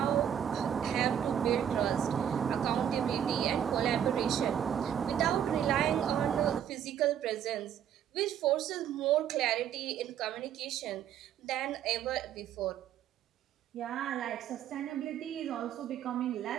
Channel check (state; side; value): quieter; left; 9.5 dB